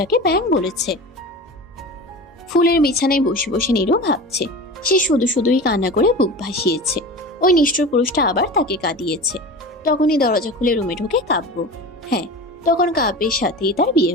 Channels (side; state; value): both; normal; correlation 0.32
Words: ব্যাং বলেছে। ফুলের বিছানায় বসে বসে নিরু ভাবছে, সে শুধু শুধুই কান্না করে বুক ভাসিয়েছে। ওই নিষ্ঠুর পুরুষটা আবার তাকে কাঁদিয়েছে। তখনই দরজা খুলে রুমে ঢোকে কাব্য। হ্যাঁ, তখন কাব্যের সাথেই তার বিয়ে